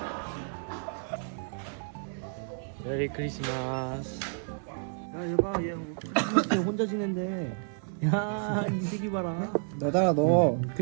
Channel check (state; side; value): silent; left; 57 dB below the other